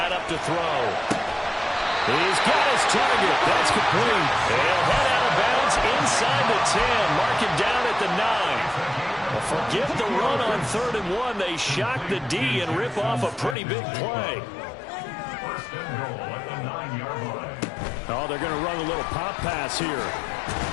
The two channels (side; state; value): right; drops out; at 13.6 s